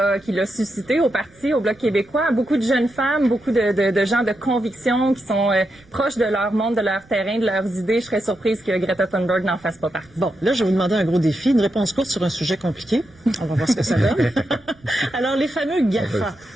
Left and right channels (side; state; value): right; noise; rumble, 29 dB below the sound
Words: suscitées au parti, au Bloc québécois. Beaucoup de jeunes femmes, beaucoup de gens de conviction qui sont proches de leur monde, de leur terrain, de leurs idées. Je serais surprise que Greta Thunberg n'en fasse pas partie. Bon, là, je vais vous demander un gros défi, une réponse courte sur un sujet compliqué. On va voir ce que ça donne. Alors, les fameux GAFA,